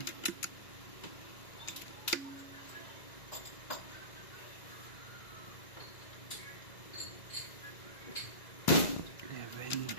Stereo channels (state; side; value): late; right; 2.0 ms